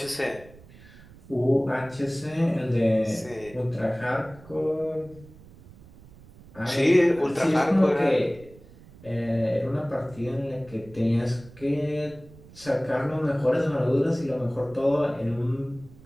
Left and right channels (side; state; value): right; noise; rumble, 22 dB below the sound